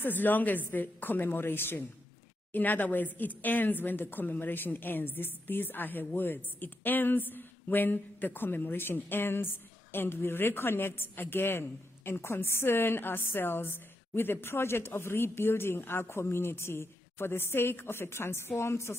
as long as the commemoration. In other words, it ends when the commemoration ends. These are her words. It ends when the commemoration ends, and we reconnect again and concern ourselves with the project of rebuilding our community for the sake of a transformed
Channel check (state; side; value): normal; both; correlation 0.83